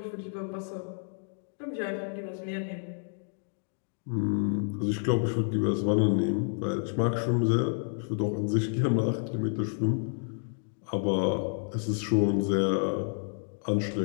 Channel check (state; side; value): silent; right; digital silence